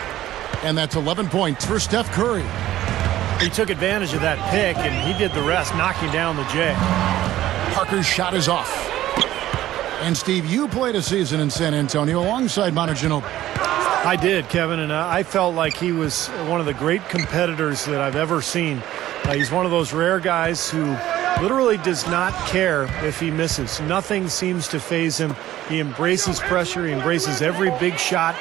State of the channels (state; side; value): quieter; left; 14.0 dB